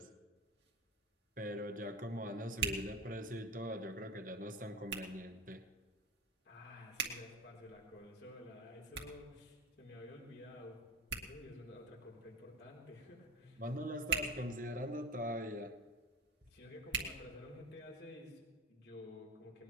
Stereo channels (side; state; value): both; normal; correlation 0.25